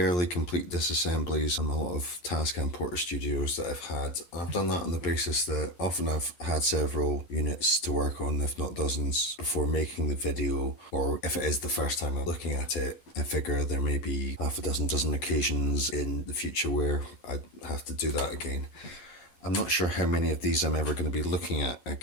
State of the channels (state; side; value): late; right; 11 ms